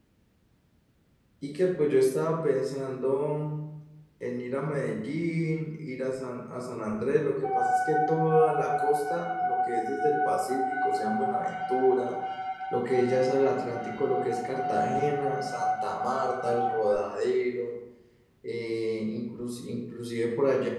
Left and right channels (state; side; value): identical; both; correlation 1.00